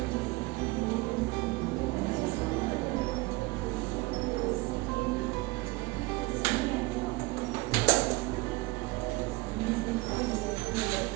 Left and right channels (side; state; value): left; quieter; 22.0 dB